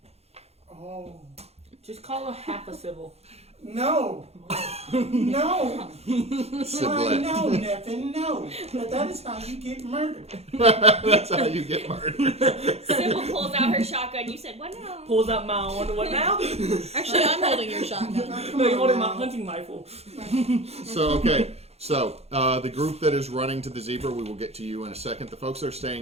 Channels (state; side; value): late; left; 0.30 ms